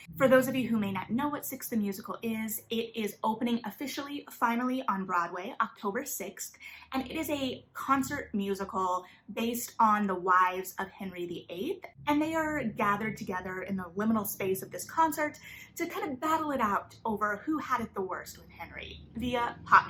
For those of you who may not know what Six the Musical is, it is opening officially, finally on Broadway, October 6th, and it is a concert musical based on the wives of Henry VIII, and they are gathered together in the liminal space of this concert to kind of battle it out over who had it the worst with Henry via pop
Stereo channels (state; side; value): identical; both; correlation 1.00